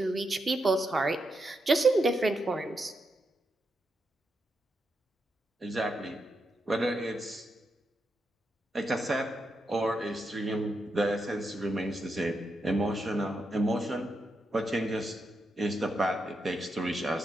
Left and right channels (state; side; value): normal; both; correlation 0.84